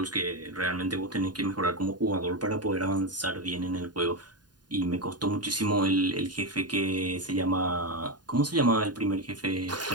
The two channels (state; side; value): late; left; 0.70 ms